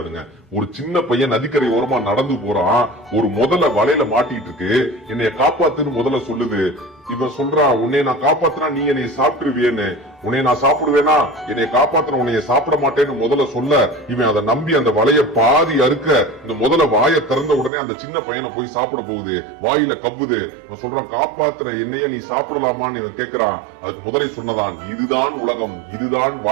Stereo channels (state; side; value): drops out; left; at 17.7 s